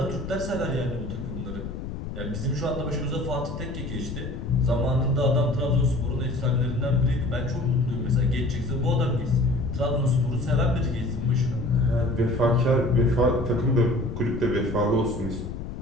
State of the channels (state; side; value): noise; left; rumble, 7 dB below the sound